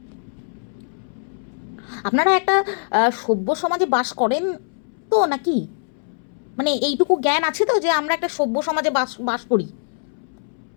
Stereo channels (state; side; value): silent; right; 64 dB below the other